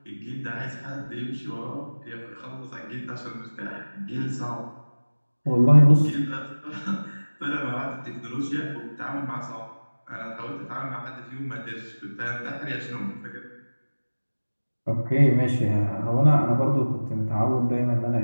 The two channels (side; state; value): both; inverted; correlation -1.00